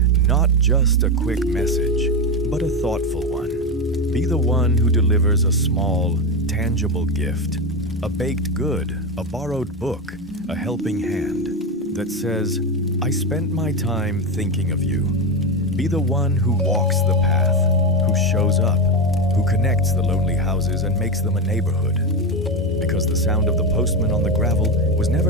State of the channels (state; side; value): normal; both; correlation 0.13